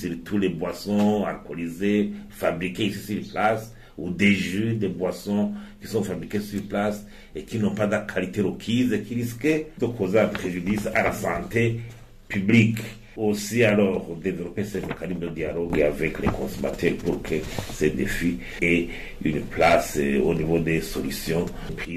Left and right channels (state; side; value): identical; both; correlation 1.00